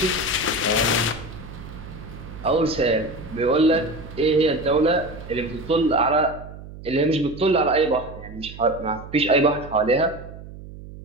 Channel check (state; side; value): noise; right; hum, 15 dB below the sound